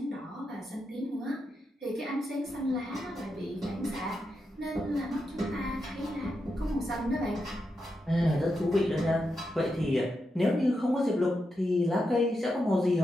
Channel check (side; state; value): both; normal; correlation 0.86